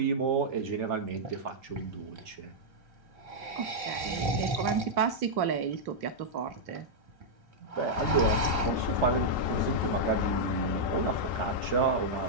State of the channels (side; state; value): left; late; 3.4 ms